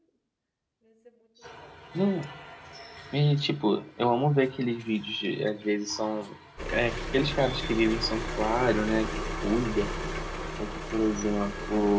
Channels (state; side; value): identical; both; correlation 1.00